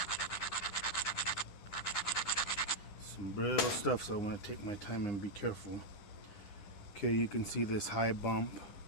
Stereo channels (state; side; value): late; right; 10 ms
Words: Some brittle stuff, so I want to take my time and be careful. Okay, you can see this high bump,